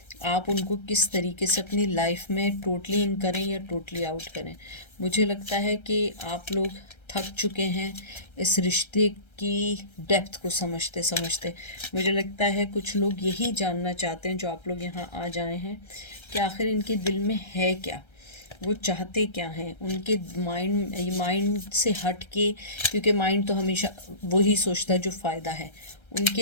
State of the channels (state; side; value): late; right; 1.3 ms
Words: आप उनको किस तरीके से अपनी लाइफ में टोटली इन करें या टोटली आउट करें। मुझे लगता है कि आप लोग थक चुके हैं इस रिश्ते की डेप्थ को समझते समझते। मुझे लगता है कुछ लोग यही जानना चाहते हैं जो आप लोग यहाँ आ जाए हैं, कि आखिर इनके दिल में है क्या, वो चाहते क्या हैं। उनके माइंड से हट के, क्योंकि माइंड तो हमेशा वही सोचता है जो फ़ायदा है।